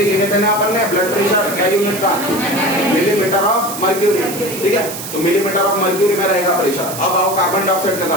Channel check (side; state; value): right; noise; hiss, 9 dB below the sound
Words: यूनिट है ना अपन ने, ब्लड प्रेशर क्या यूनिट का? मिलीमीटर ऑफ मर्क्यूरी, ठीक है। तो मिलीमीटर ऑफ मर्क्यूरी में रहेगा प्रेशर। अब आओ कार्बन डाइऑक्साइड की